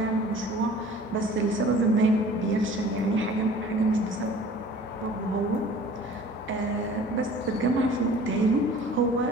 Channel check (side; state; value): both; normal; correlation 0.47